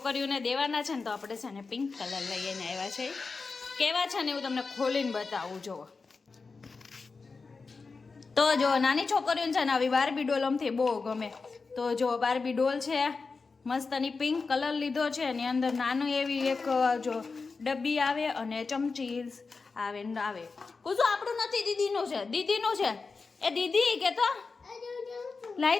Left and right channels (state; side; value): quieter; right; 4.4 dB